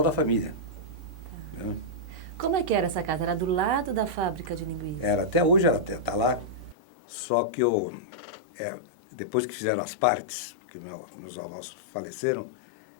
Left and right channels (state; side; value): drops out; right; at 6.8 s